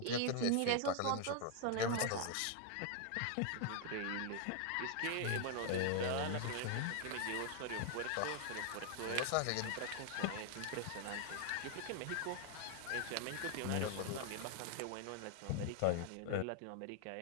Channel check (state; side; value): different; both; correlation 0.00